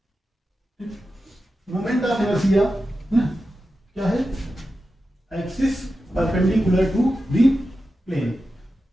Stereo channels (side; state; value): both; normal; correlation 0.91